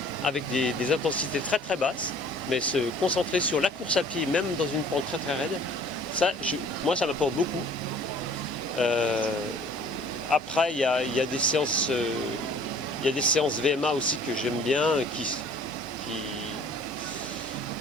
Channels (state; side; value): normal; both; correlation 0.52